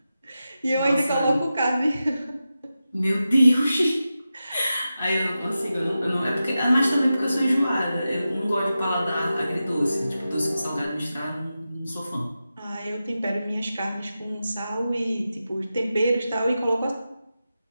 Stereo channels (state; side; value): inverted; both; correlation -0.92